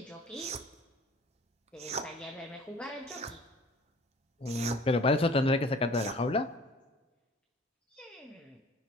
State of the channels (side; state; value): both; normal; correlation 0.49